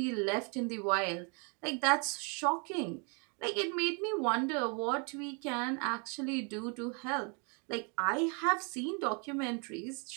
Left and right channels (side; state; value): left; quieter; 35.5 dB